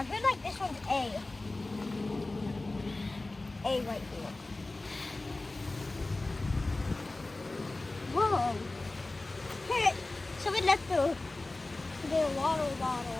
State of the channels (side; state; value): right; quieter; 3.0 dB